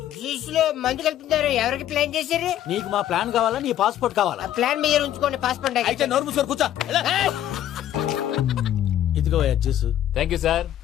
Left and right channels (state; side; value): quieter; right; 11.8 dB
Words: జ్యూస్ లో మందు కలుపుతున్నారు. ఎవరికి ప్లాన్ చేశారు? నీకు మా ప్లాన్ కావాలా, నీ పాస్పోర్ట్ కావాలా? ఆ ప్లాన్ మీద ఉంచుకోండి. పాస్పోర్ట్ అయితే నోరు మూసుకొని కూర్చో. ఇదిగో జ్యూస్. Thank you sir.